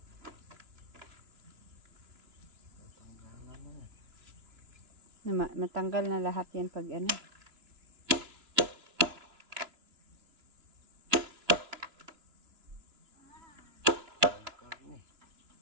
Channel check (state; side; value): late; left; 2.9 ms